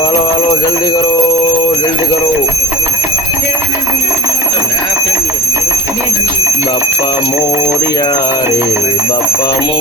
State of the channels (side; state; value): both; normal; correlation 0.27